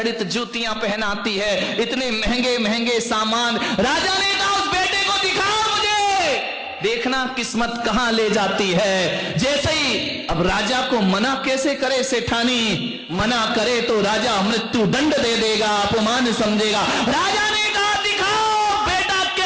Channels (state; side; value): identical; both; correlation 1.00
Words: जूतियां पहनाती है, इतने महंगे महंगे सामान। राजा ने कहा उस बेटे को दिखाओ मुझे, देखना किस्मत कहां ले जाती है। जैसे ही अब राजा को मना कैसे करे सेठानी, मना करे तो राजा मृत्यु दंड दे देगा, अपमान समझेगा। राजा ने कहा दिखाओ बेटा